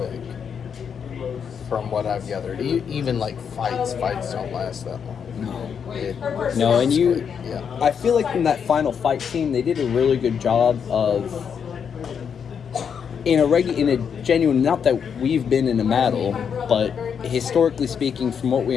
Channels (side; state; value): right; quieter; 7.1 dB